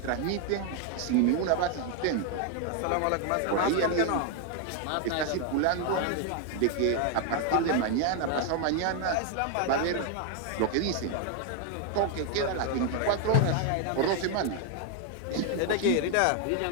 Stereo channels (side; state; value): both; different; correlation 0.01